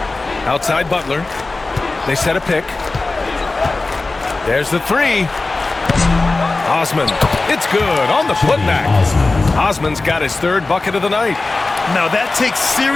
Outside Butler. They set a pick. There's the three. Osman. It's good on the putback. Osman's got his 3rd bucket of the night. Now that takes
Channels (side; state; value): right; quieter; 3.4 dB